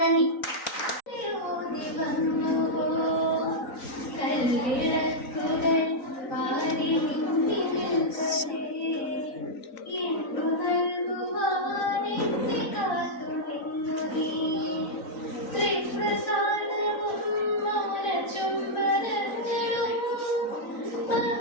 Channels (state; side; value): late; right; 3.9 ms